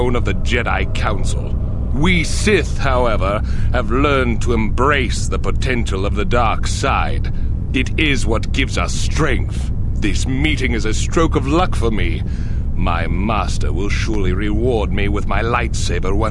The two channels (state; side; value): identical; both; correlation 1.00